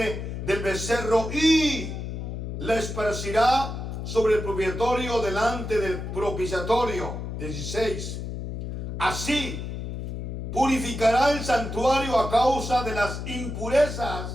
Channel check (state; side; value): noise; left; hum, 6 dB below the sound